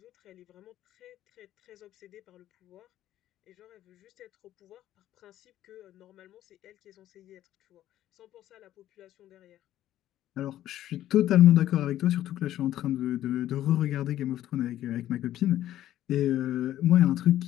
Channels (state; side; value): quieter; right; 13.0 dB